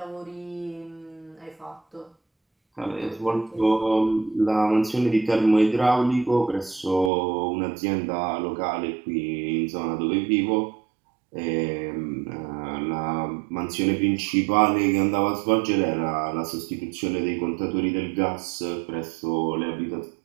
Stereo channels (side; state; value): left; drops out; at 7.1 s